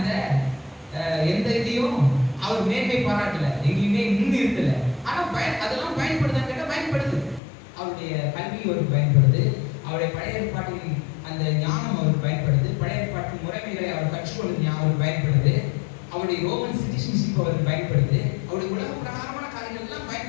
எந்த இதையும் அவர் மேன்மை பாராட்டல, எங்கேயுமே முன்னிறுத்தல. ஆனா அதெல்லாம் பயன்படுதான்னு கேட்டா பயன்படுது. அவருடைய கல்வி அவருக்கு பயன்படுது, அவருடைய பழைய ஏற்பாட்டின் அந்த ஞானம் அவருக்கு பயன்படுது, பழைய ஏற்பாட்டு முறைமைகளை அவர் கற்றுக்கொள்வது அவருக்கு பயன்படுது, அவருடைய ரோமன் சிட்டிசன்ஷிப் அவருக்கு பயன்படுது, அவருடைய உலக பிரகாரமான காரியங்கள் எல்லாம்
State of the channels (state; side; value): drops out; right; at 7.4 s